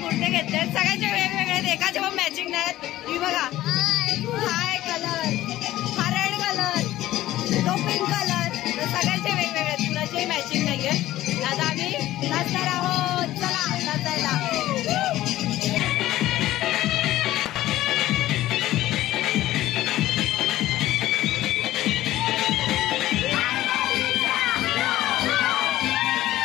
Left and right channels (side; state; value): right; quieter; 15.0 dB